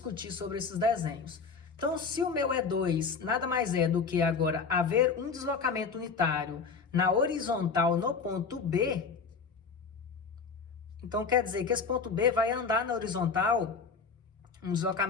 sobre esses desenhos. Então, se o meu E2 nada mais é do que agora haver um deslocamento unitário na horizontal no ponto B, então quer dizer que esse ponto B vai andar na horizontal um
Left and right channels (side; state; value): right; quieter; 5.2 dB